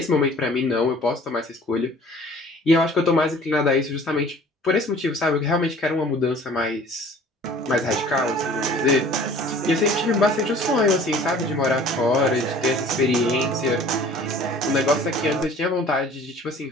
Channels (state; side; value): normal; both; correlation 0.49